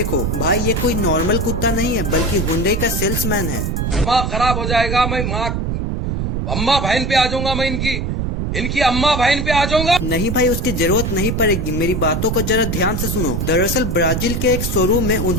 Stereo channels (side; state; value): right; noise; rumble, 1 dB below the sound